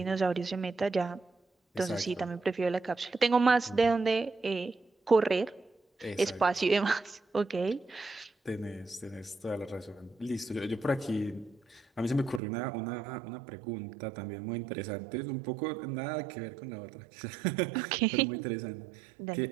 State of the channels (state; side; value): drops out; left; at 12.4 s